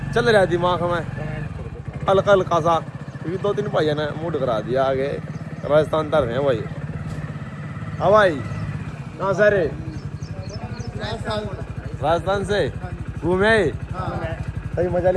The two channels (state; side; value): identical; both; correlation 1.00